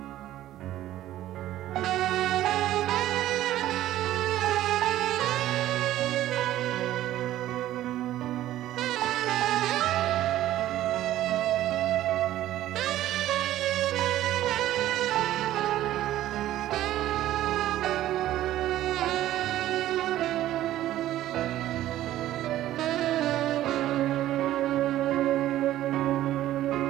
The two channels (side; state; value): left; quieter; 13.7 dB